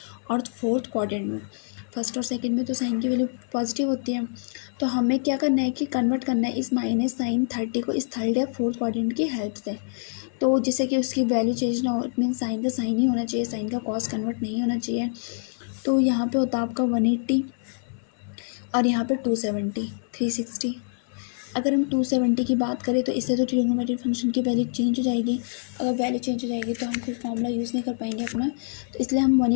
और फोर्थ क्वाड्रेंट में। फर्स्ट और सेकंड में तो साइन की वैल्यू पॉजिटिव होती है, तो हमें क्या करना है कि कन्वर्ट करना है इस -sin30 को इस थर्ड या फोर्थ क्वाड्रेंट की हेल्प से। तो जिससे कि उसकी वैल्यू चेंज ना हो, इट मीन साइन का साइन ही होना चाहिए, साइन का कॉस कन्वर्ट नहीं होना चाहिए। तो यहाँ पे होता है आपका 180 और यहाँ पे 270, 360। अगर हम 270 की बात करें तो इससे तो ट्रिग्नोमेट्रिक फंक्शन की वैल्यू चेंज हो जाएगी। अगर वैल्यू चेंज हो जाएगी तो हम फिर फॉर्मूला यूज़ नहीं कर पाएंगे अपना, तो इसलिए हम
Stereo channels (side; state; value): right; silent; 57 dB below the other